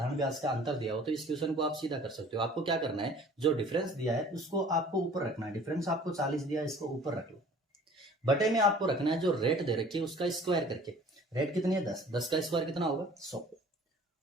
ब्याज का अंतर दिया हो, तो इस क्वेश्चन को आप सीधा कर सकते हो। आपको क्या करना है, जो डिफरेंस दिया है उसको आपको ऊपर रखना है। डिफरेंस आपको 40 दिया है, इसको ऊपर रख लो। बटे में आपको रखना है जो रेट दे रखी है उसका स्क्वायर करके। रेट कितनी है 10, 10 का स्क्वायर कितना होगा 100,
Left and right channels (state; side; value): normal; both; correlation 0.50